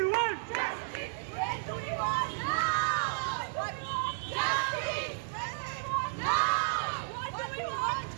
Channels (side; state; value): left; silent; digital silence